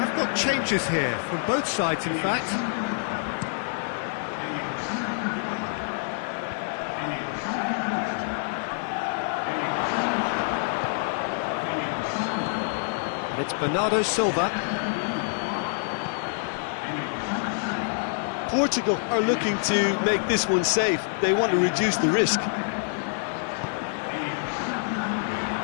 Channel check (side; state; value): right; silent; 56 dB below the other